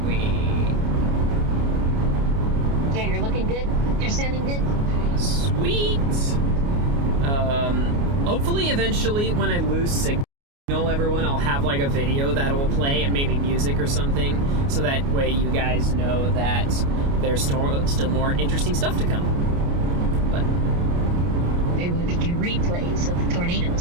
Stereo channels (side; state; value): left; late; 29 ms